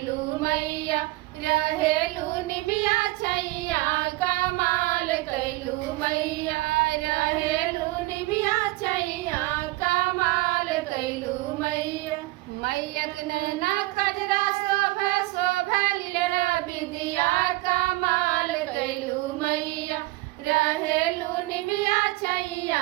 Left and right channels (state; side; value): quieter; left; 20.3 dB